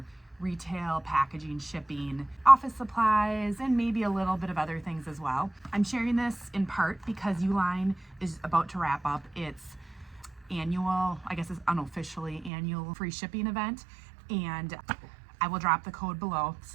retail, packaging, shipping, office supplies, and maybe a little bit of other things as well. I'm sharing this in part because ULINE is about to wrap up its annual, I guess it's unofficially annual free shipping event, and I will drop the code below. This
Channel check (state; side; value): drops out; left; at 12.5 s